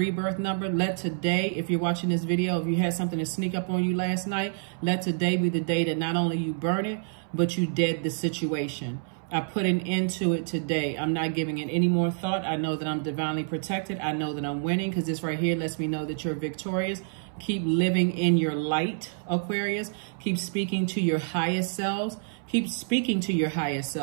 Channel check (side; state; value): left; silent; 60 dB below the other